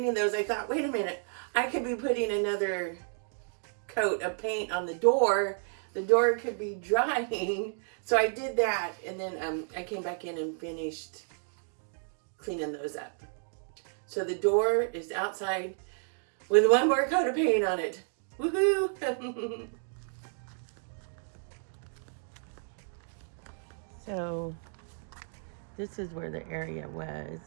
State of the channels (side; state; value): left; silent; 57 dB below the other